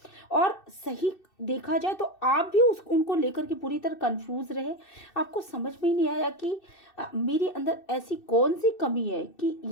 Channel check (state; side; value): late; right; 2.6 ms